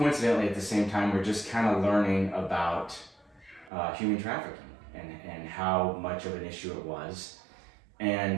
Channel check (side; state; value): left; drops out; at 3.7 s